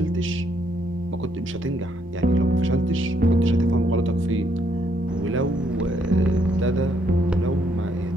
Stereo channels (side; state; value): both; normal; correlation 0.72